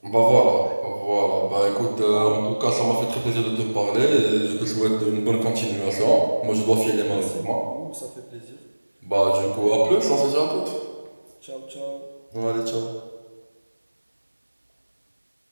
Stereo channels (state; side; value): inverted; both; correlation -1.00